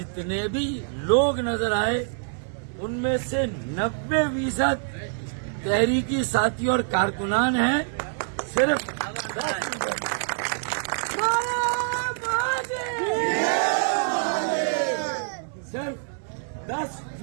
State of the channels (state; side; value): silent; left; 61 dB below the other